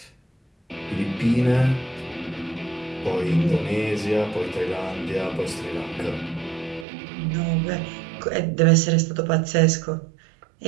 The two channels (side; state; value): left; drops out; at 6.9 s